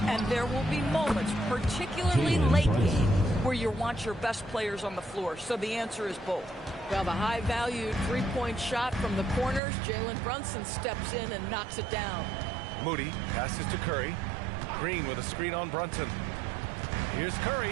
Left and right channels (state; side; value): drops out; left; at 9.6 s